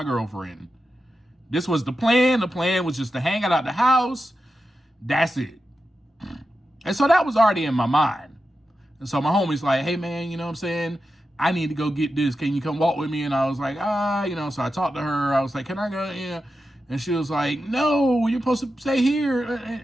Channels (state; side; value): normal; both; correlation 0.90